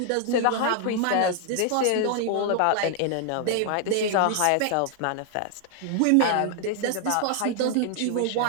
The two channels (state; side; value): different; both; correlation 0.00